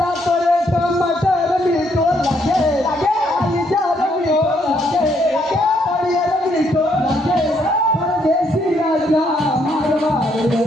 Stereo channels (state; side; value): normal; both; correlation 0.72